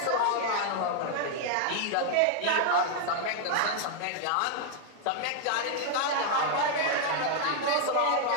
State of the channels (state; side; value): different; both; correlation 0.00